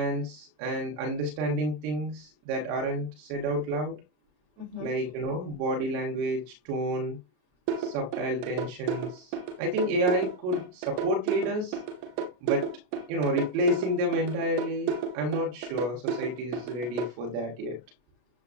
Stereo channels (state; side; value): late; left; 33 ms